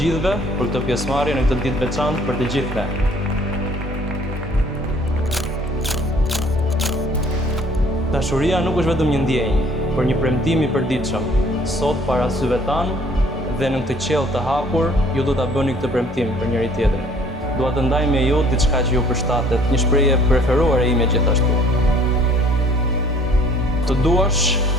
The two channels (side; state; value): both; normal; correlation 0.56